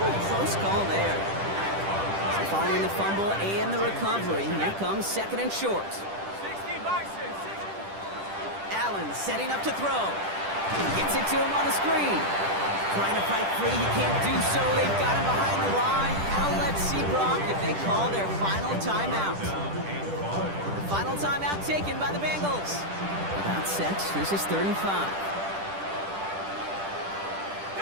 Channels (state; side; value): late; left; 10 ms